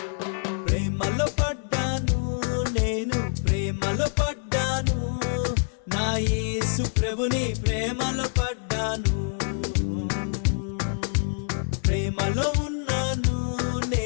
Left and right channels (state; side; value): silent; right; digital silence